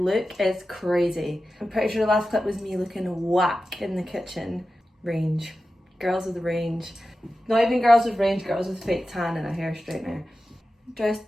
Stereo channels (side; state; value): both; normal; correlation 0.93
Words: is crazy. I'm pretty sure the last clip was me looking whack in the kitchen. Range. Girls with range. Not even girls with range, girls with fake tan and a hair straightener. Dressed